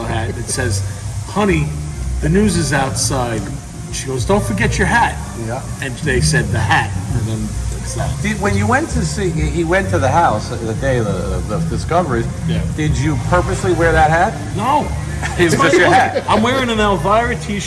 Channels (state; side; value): identical; both; correlation 1.00